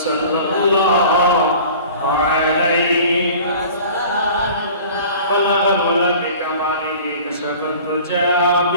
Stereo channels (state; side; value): inverted; both; correlation -0.43